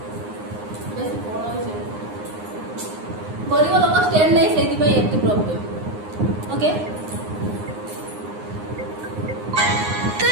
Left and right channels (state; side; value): late; left; 9.7 ms